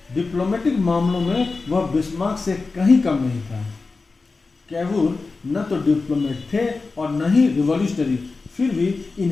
Diplomatic मामलों में वह बिस्मार्क से कहीं कम नहीं था। केवूर न तो डिप्लोमेट थे और न ही रिवॉल्यूशनरी, फिर भी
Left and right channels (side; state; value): right; quieter; 4.0 dB